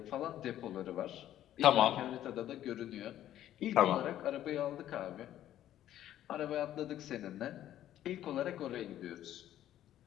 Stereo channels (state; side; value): quieter; right; 12.2 dB